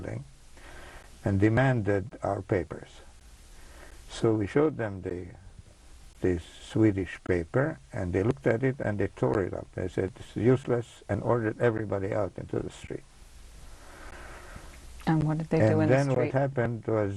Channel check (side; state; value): both; identical; correlation 1.00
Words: and demanded our papers. So we showed them the Swedish paper, and they looked at it and they tore it up. They said it's useless, and ordered everybody out into the street. And what did they do in the street? And then what happened